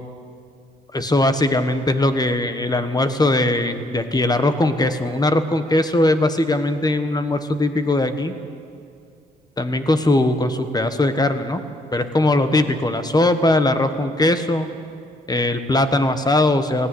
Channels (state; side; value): normal; both; correlation 0.69